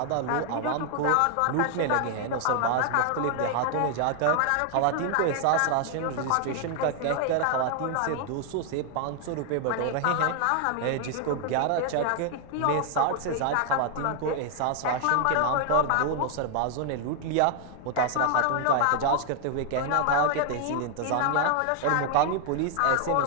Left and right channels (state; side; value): different; both; correlation 0.00